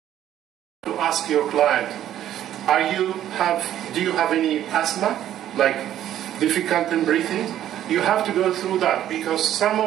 Ask your client, do you have any asthma, like difficult in breathing? You have to go through that because some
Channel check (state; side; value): quieter; left; 11.6 dB